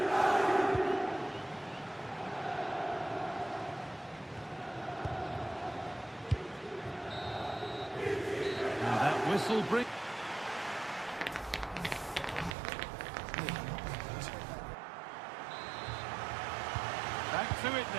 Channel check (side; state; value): left; drops out; at 12.6 s